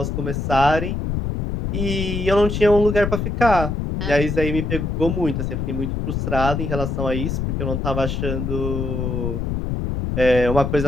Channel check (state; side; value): noise; left; rumble, 2 dB below the sound